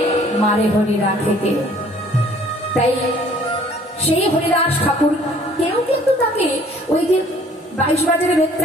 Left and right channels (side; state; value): both; normal; correlation 0.56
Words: মারে হরি রাখে কে। তাই সেই হরিদাস ঠাকুর কেউ কিন্তু তাকে ওই যে 22 বাজারে